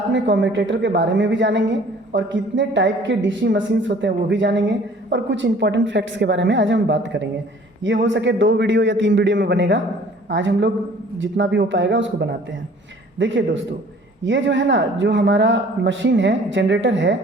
में कम्यूटेटर के बारे में भी जानेंगे और कितने टाइप के डीसी मशीन्स होते हैं वो भी जानेंगे और कुछ इंपॉर्टेंट फैक्ट्स के बारे में आज हम बात करेंगे। ये हो सके 2 वीडियो या 3 वीडियो में बनेगा। आज हम लोग जितना भी हो पाएगा उसको बनाते हैं। देखिए दोस्तों, ये जो है ना, जो हमारा मशीन है, जनरेटर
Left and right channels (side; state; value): both; normal; correlation 0.52